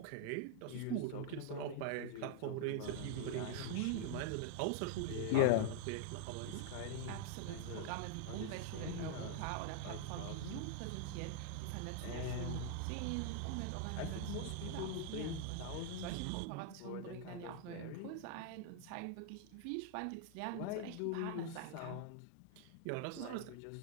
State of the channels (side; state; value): both; different; correlation 0.00